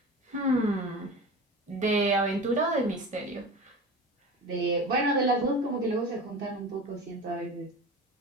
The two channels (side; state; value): both; normal; correlation 0.33